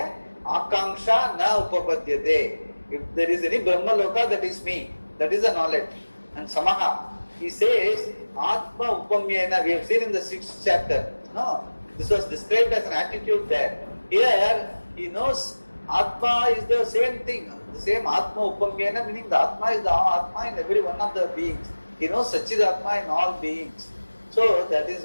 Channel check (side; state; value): both; inverted; correlation -1.00